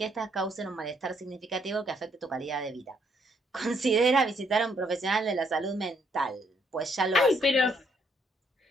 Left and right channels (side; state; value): both; normal; correlation 0.71